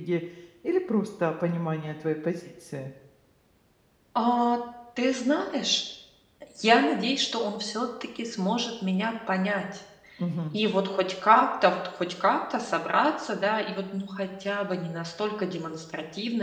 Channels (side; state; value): both; identical; correlation 1.00